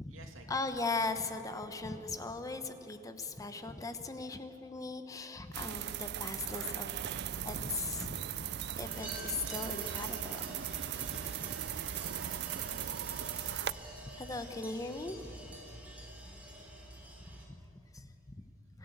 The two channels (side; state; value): both; normal; correlation 0.21